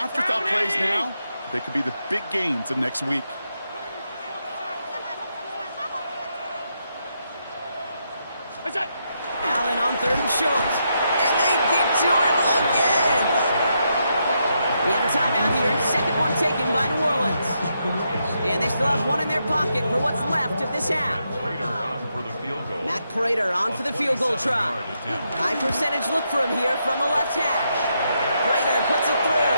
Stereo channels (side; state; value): both; inverted; correlation -0.81